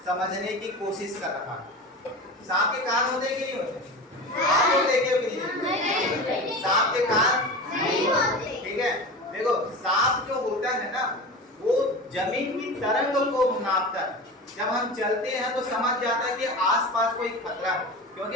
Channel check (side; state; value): both; normal; correlation 0.30